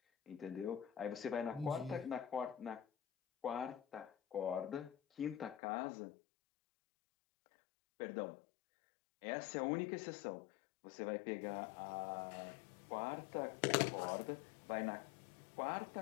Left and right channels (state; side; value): drops out; right; at 5.6 s